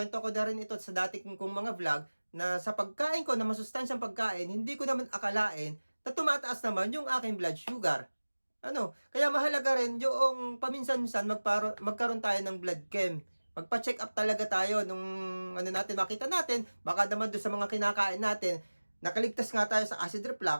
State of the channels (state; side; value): inverted; both; correlation -1.00